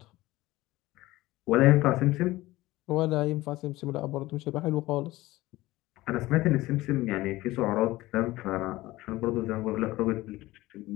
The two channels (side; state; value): right; quieter; 18.2 dB